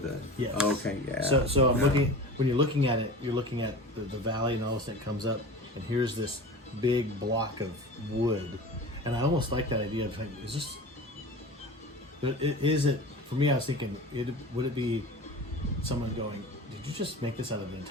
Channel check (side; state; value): both; normal; correlation 0.35